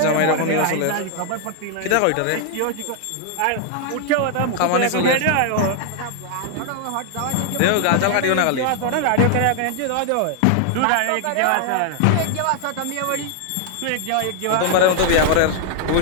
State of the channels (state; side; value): different; both; correlation 0.00